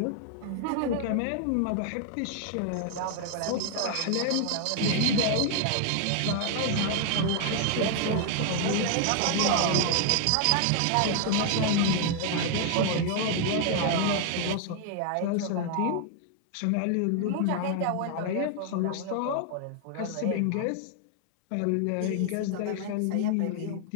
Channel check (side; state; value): both; different; correlation 0.00